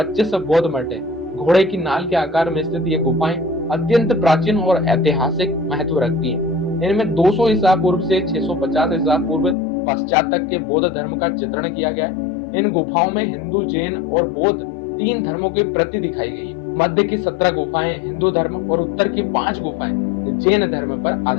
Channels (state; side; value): drops out; right; at 9.6 s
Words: बौद्ध मठ है। घोड़े की नाल के आकार में स्थित ये गुफाएं अत्यंत प्राचीन और ऐतिहासिक महत्व रखती हैं। इनमें 200 ईसा पूर्व से 650 ईसा पूर्व पश्चात तक के बौद्ध धर्म का चित्रण किया गया है। इन गुफाओं में हिंदू, जैन और बौद्ध 3 धर्मों की प्रति दिखाई गई है। मध्य की 17 गुफाएं हिंदू धर्म और उत्तर की 5 गुफाएं जैन धर्म पर